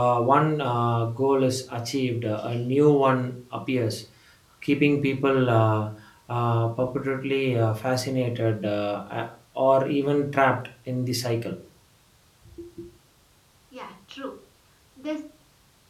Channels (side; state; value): both; identical; correlation 1.00